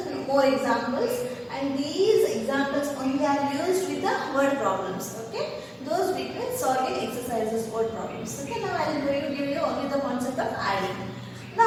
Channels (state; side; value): identical; both; correlation 1.00